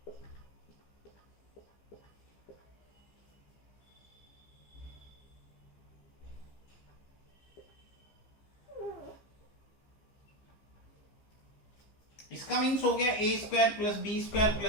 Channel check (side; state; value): right; late; 15 ms